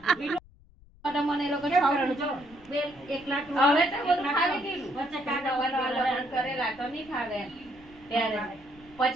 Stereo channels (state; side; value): noise; left; rumble, 26 dB below the sound